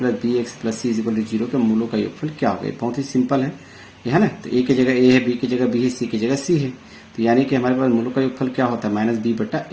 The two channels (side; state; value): both; identical; correlation 1.00